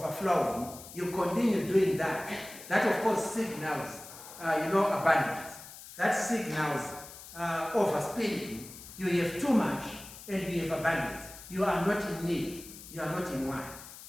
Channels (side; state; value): left; noise; hiss, 15 dB below the sound